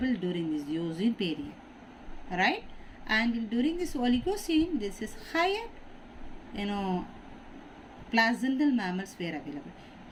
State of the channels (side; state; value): both; identical; correlation 1.00